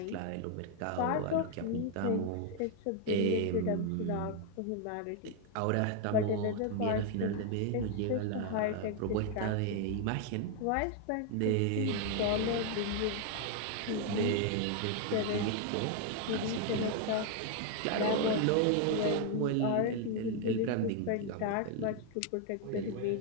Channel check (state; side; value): different; both; correlation 0.00